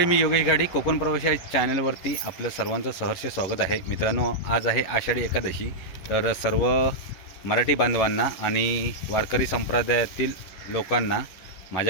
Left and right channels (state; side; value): late; right; 11 ms